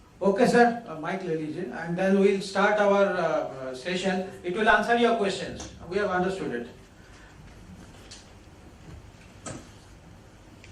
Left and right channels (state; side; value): identical; both; correlation 1.00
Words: Okay, sir. Mic le लीजिए, and then we'll start our session. It will answer your questions. We have understood it.